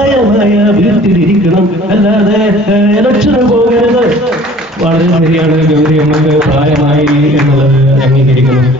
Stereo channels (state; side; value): normal; both; correlation 0.50